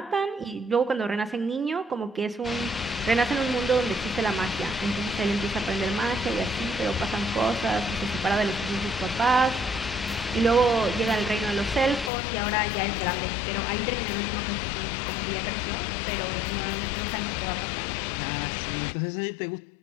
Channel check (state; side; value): drops out; right; at 12.1 s